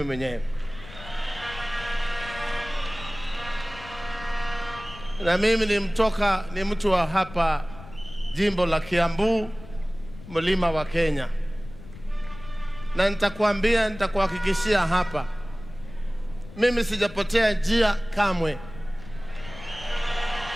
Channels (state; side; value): noise; left; rumble, 16 dB below the sound